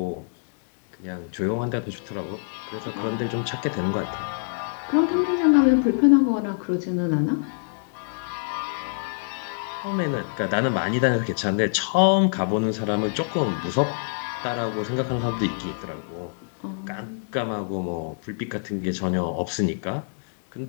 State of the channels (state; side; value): silent; right; digital silence